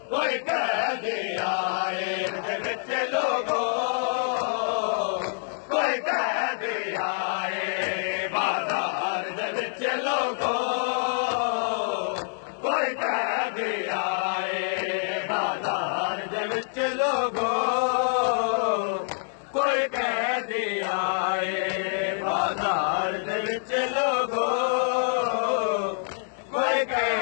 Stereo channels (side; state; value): right; silent; digital silence